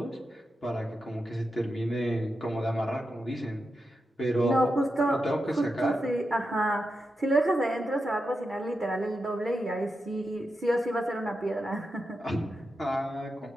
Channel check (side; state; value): both; normal; correlation 0.88